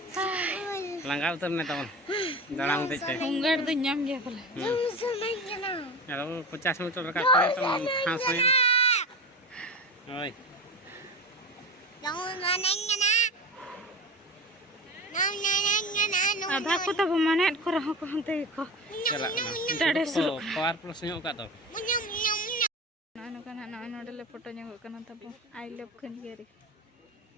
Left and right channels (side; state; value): both; normal; correlation 0.27